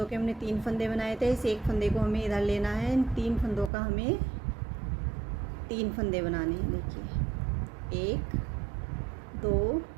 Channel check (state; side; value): drops out; left; at 3.7 s